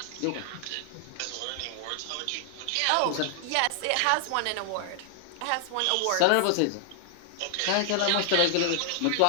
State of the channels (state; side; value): different; both; correlation 0.00